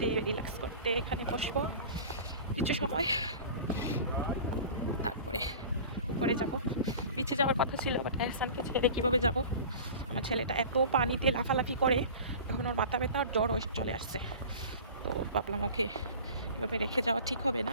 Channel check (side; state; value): both; inverted; correlation -0.39